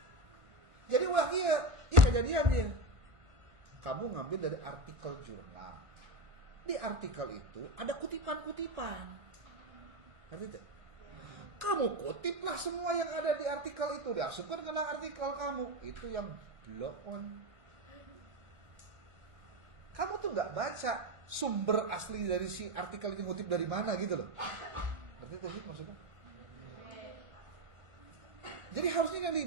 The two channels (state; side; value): late; left; 1.4 ms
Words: Jadi wah iya kejadian dia. Kamu ngambil dari artikel jurnal. Di artikel itu ada kutipan-kutipan. Ngerti tidak? Kamu kutiplah semua yang ada di artikel itu, diasupkan ke artikel kamu. Itu yang blow on. Kamu tuh nggak baca sumber asli dari si artikel itu ngutip dari mana gitu loh. Ngerti itu sih maksudnya? Jadi harusnya yang